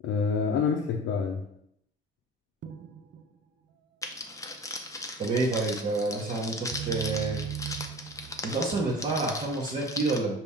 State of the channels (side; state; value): both; normal; correlation 0.37